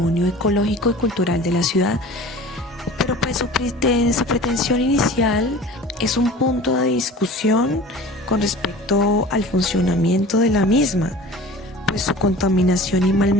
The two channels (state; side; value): normal; both; correlation 0.41